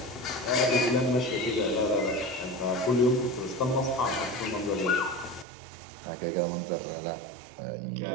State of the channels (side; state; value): left; drops out; at 5.5 s